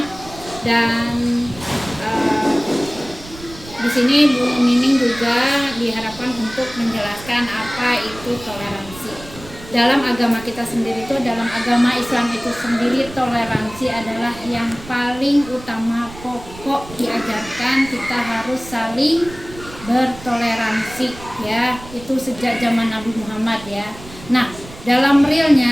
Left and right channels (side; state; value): right; noise; rumble, 17 dB below the sound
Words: Dan di sini Bu Nining juga diharapkan untuk menjelaskan apa itu toleransi. Dalam agama kita sendiri itu, dalam agama Islam itu sendiri, toleransi adalah yang paling utama, pokok diajarkan kita harus saling bertoleransi ya. Itu sejak zaman Nabi Muhammad ya. Nah, dalam